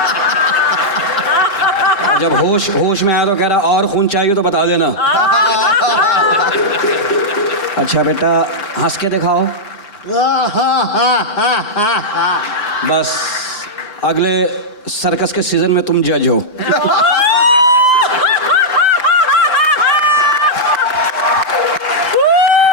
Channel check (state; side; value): late; right; 4.9 ms